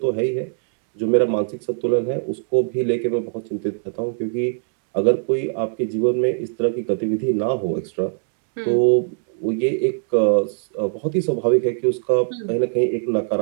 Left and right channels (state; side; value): silent; left; digital silence